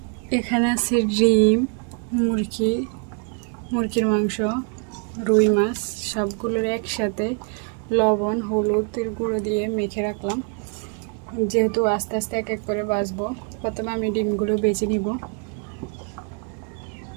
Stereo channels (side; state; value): left; quieter; 37.9 dB